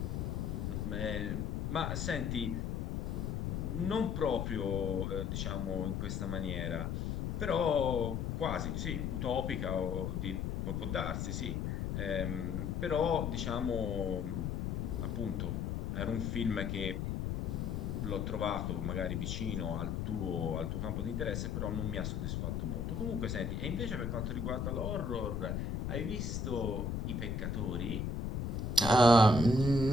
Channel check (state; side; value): noise; left; rumble, 1 dB below the sound